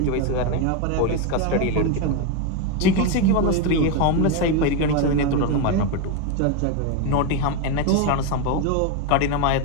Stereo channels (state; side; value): different; both; correlation 0.03